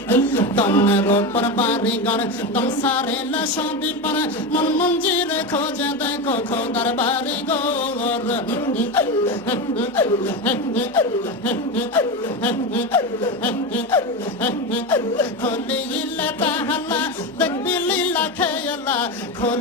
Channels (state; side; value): normal; both; correlation 0.18